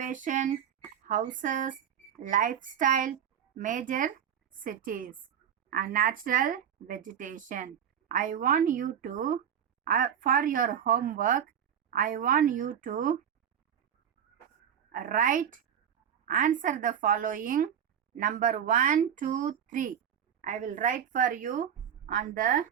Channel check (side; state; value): left; quieter; 8.8 dB